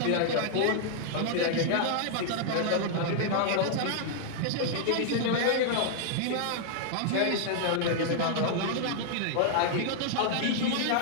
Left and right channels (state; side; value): different; both; correlation -0.01